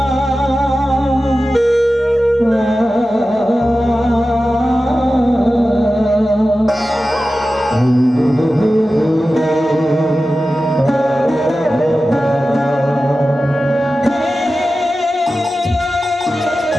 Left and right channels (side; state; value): both; normal; correlation 0.94